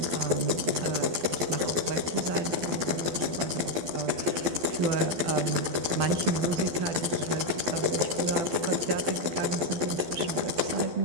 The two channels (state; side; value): late; left; 12 ms